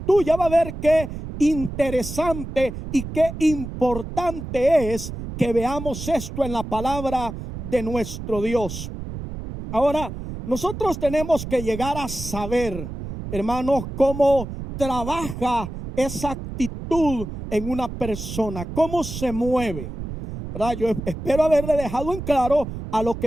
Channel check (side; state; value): right; noise; rumble, 8 dB below the sound